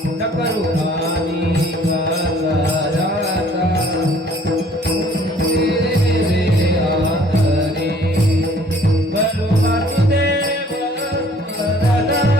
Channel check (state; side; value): normal; both; correlation 0.56